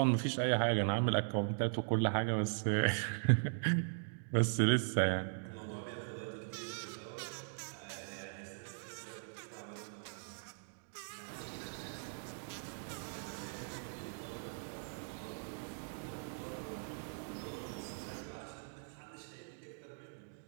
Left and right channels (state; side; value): silent; left; digital silence